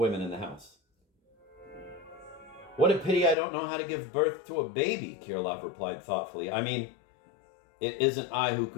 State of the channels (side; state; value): right; drops out; at 3.4 s